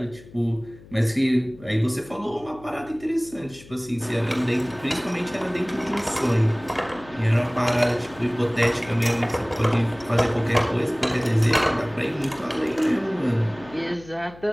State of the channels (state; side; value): noise; left; hum, 21 dB below the sound